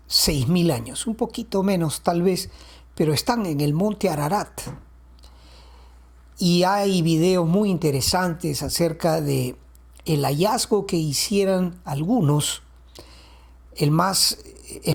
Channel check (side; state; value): both; identical; correlation 1.00